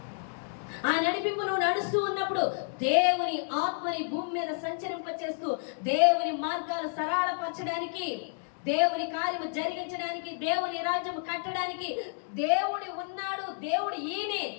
ఆ నడిపింపు నువ్వు నడుస్తూ ఉన్నప్పుడు దేవుని ఆత్మని భూమి మీద సంచరింపచేస్తూ దేవుని మార్గాలు సరళపరచడానికి, దేవుని కార్యము జరిగించడానికి, దేవుని రాజ్యం కట్టడానికి దేవుడు ఉన్నాడు, దేవుడు ఈయనే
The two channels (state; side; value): silent; right; digital silence